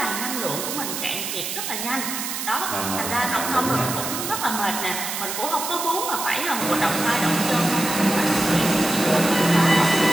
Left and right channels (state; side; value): noise; right; hiss, 4 dB below the sound